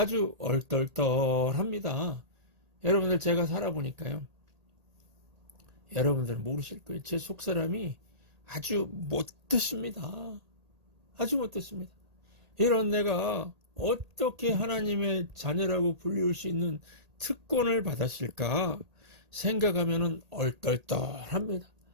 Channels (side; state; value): left; late; 1.8 ms